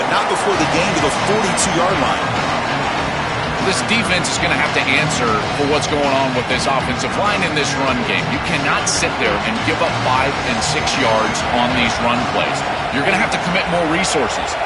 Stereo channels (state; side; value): identical; both; correlation 1.00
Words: not before the gain to the 42-yard line. This defense is going to have to answer for what's going on with this offensive line in this run game. You cannot sit there and give up 5 and 6 yards on these run plays. You're going to have to commit more resources.